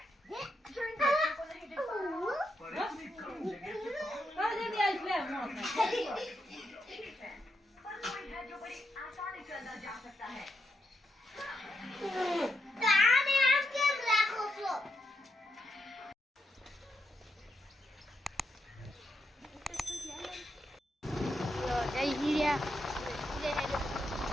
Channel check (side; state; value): both; normal; correlation 0.83